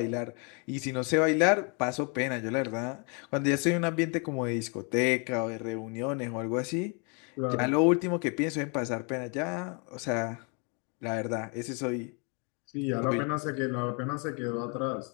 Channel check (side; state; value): right; quieter; 35.1 dB